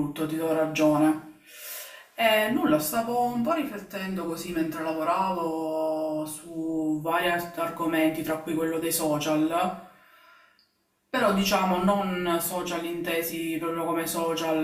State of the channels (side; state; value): both; identical; correlation 1.00